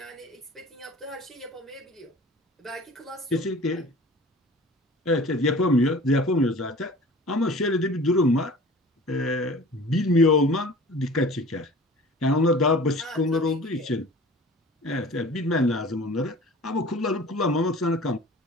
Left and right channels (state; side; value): normal; both; correlation 0.43